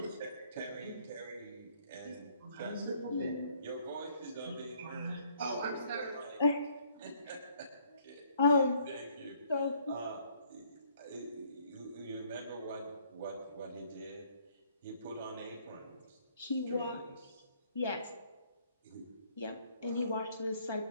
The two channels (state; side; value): inverted; both; correlation -0.64